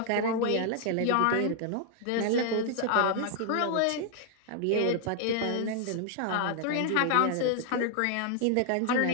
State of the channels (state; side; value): different; both; correlation 0.00